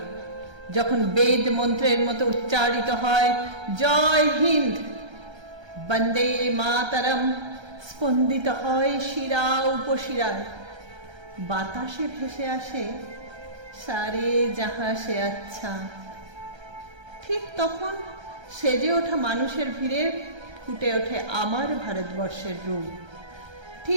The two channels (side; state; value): left; late; 1.3 ms